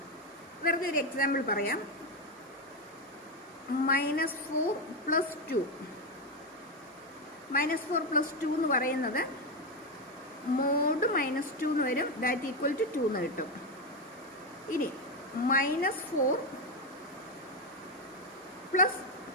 വെറുതെ ഒരു എക്സാമ്പിൾ പറയാം. -4 + 2, -4 + 2 എന്ന് പറയുന്നത് മോഡ് -2 എന്ന് വരും, ദാറ്റ് ഈക്വൽ ടു 2 എന്ന് കിട്ടും. ഇനി -4 +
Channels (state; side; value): normal; both; correlation 0.09